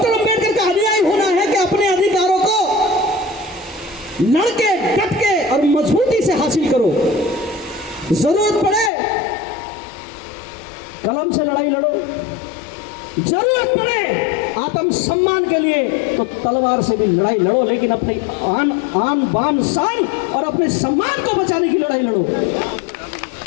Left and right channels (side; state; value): right; drops out; at 8.9 s